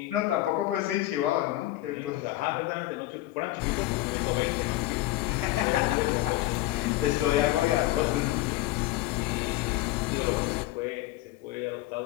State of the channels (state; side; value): quieter; right; 17.0 dB